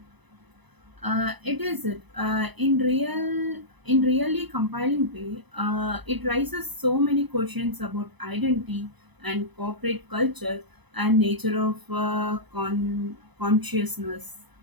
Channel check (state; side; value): late; left; 1.0 ms